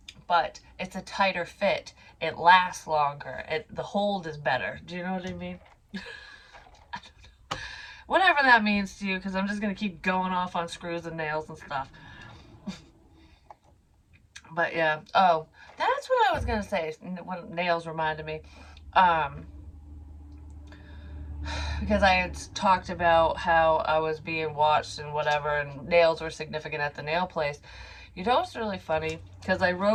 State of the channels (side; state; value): both; identical; correlation 1.00